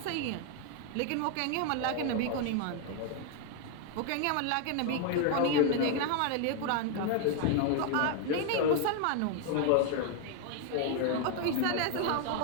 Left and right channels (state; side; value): different; both; correlation 0.00